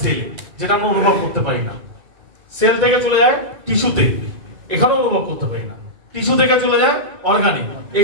সেল, যেটা আমরা অনুভব করতে পারি না। সেল থেকে চলে যায় টিস্যুতে, এখানে অনুভব করতে পারি না। টিস্যু থেকে চলে যায় অর্গানে,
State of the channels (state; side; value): late; left; 2.2 ms